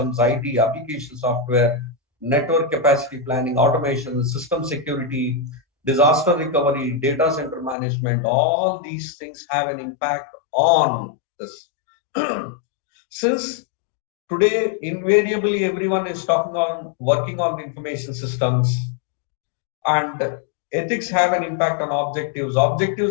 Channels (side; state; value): right; drops out; at 7.8 s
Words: IT, application software, network capacity planning, automation, system security, disaster recovery, data center management, all these things have an impact on this. Since today, invariably, everyone is working on information systems, and ethics have an impact on objectives.